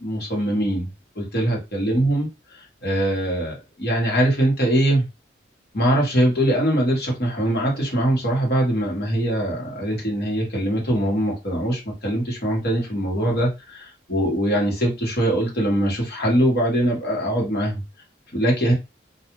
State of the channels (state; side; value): normal; both; correlation 0.67